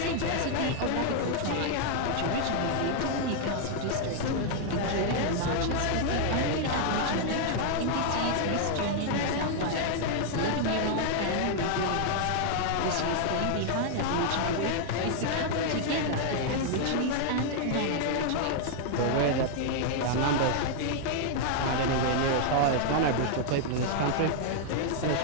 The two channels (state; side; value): different; both; correlation 0.00